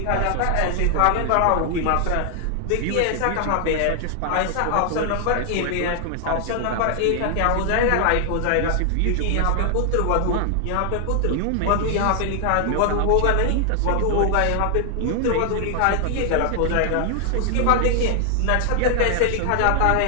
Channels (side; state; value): both; different; correlation 0.00